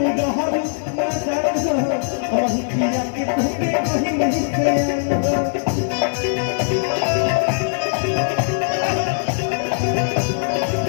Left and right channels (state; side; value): silent; right; digital silence